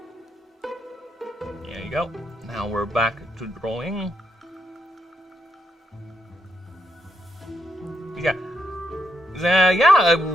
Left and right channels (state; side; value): normal; both; correlation 0.80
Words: There you go. Now we're back to drawing. Yeah.